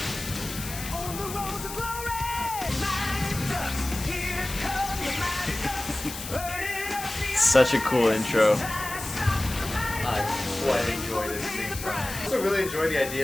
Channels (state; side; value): noise; left; hiss, 9 dB below the sound